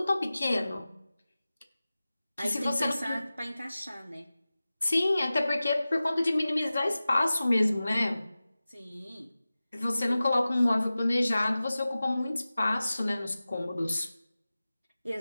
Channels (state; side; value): inverted; both; correlation -0.96